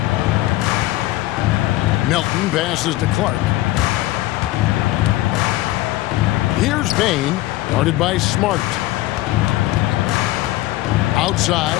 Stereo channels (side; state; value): right; quieter; 17.1 dB